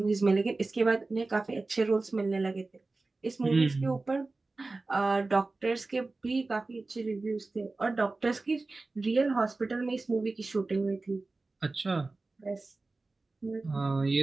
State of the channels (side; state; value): left; quieter; 3.4 dB